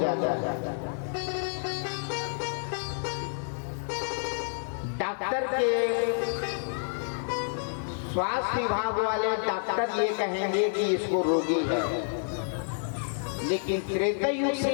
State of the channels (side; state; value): right; silent; digital silence